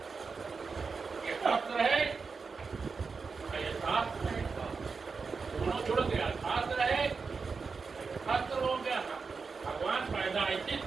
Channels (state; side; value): quieter; left; 4.9 dB